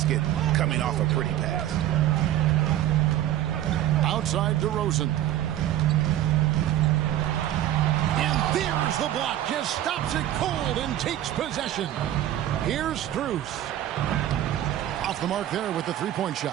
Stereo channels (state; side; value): quieter; left; 12.7 dB